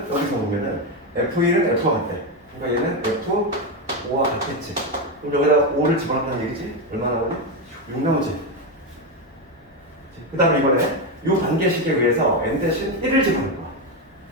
여기서 보면은 F1은 F와 같대. 그러니까 얘는 F5와 같겠지. 그럼 여기다 5를 집어넣는다는 얘기지? 얼마 나오니? 6 나오지. 그 다음에 이번에 이 단계식에 의해서 n 대신 1을 집어넣을 거야.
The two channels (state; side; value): normal; both; correlation 0.10